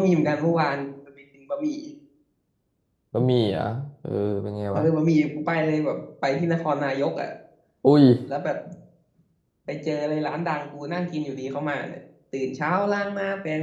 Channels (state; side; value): identical; both; correlation 1.00